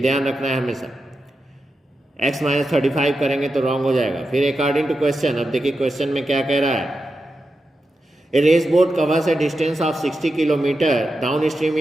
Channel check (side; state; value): both; normal; correlation 0.89